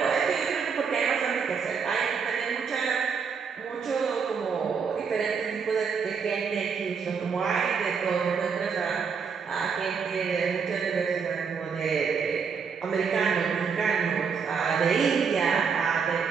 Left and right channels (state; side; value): quieter; left; 6.0 dB